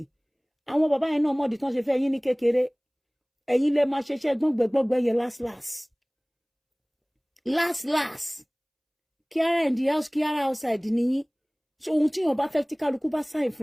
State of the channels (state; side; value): identical; both; correlation 1.00